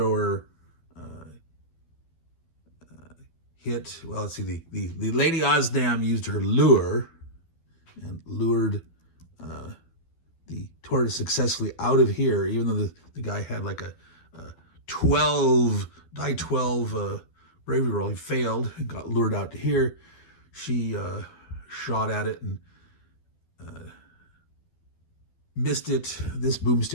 hit. Well, let's see. The Lady Osnam used her lure and lured the tortoise successfully out of here, even though the guy had like a 12 bravery roll. He failed and got lured out to here. She shot at it and missed it. This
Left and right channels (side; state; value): right; late; 12 ms